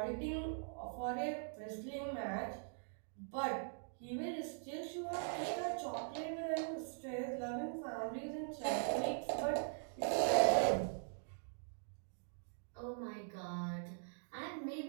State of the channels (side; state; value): left; silent; digital silence